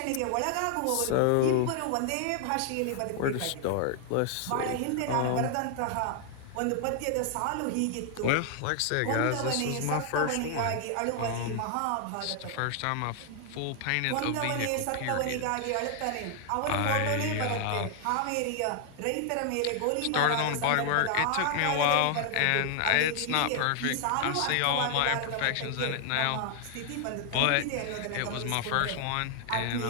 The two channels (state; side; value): different; both; correlation 0.00